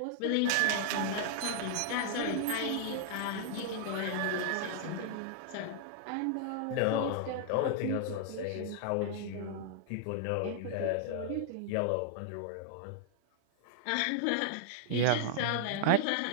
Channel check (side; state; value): both; different; correlation -0.01